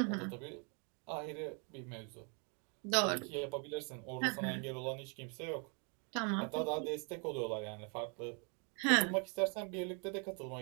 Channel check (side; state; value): left; quieter; 37.1 dB